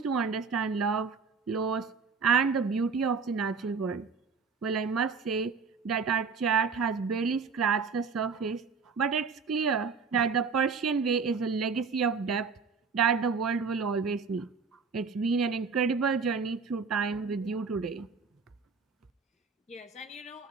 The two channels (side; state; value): left; quieter; 5.2 dB